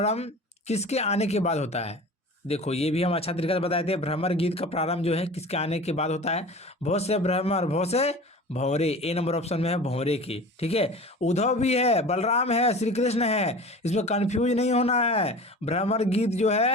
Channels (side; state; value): both; normal; correlation 0.37